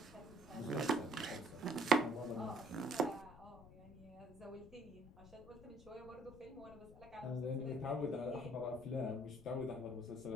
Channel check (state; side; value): noise; left; rumble, 18 dB below the sound